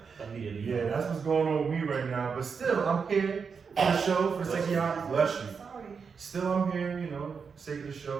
Immediately. Yeah, that's what's going on with me right now. But still, I'm here for the show, for the sake of y'all. Bless you. Sorry. Still, I'm here, you know, for the sake of the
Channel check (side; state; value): left; quieter; 5.8 dB